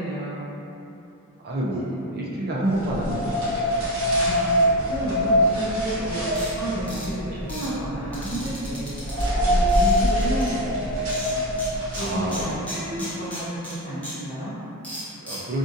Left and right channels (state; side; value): normal; both; correlation 0.12